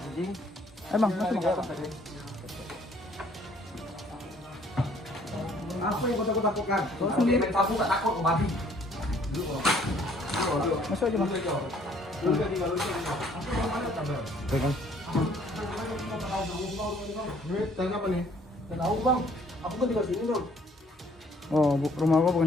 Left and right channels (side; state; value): both; normal; correlation 0.61